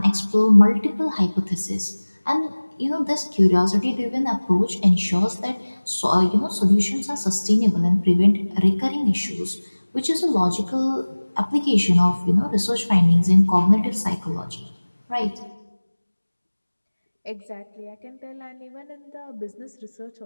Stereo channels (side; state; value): both; inverted; correlation -1.00